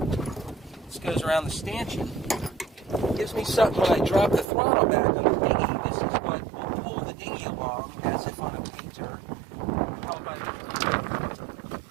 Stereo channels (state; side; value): drops out; left; at 4.5 s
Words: This goes around the stanchion. Gives me something when I drop the throttle back on the dinghy. This is what will pull the dinghy along as if on a painter. Held by